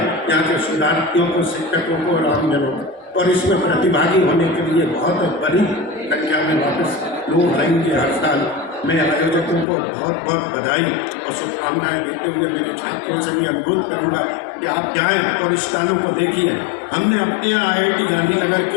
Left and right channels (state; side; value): drops out; right; at 9.7 s